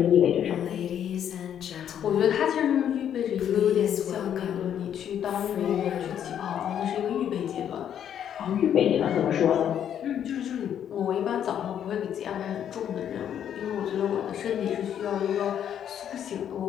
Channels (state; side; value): quieter; right; 9.5 dB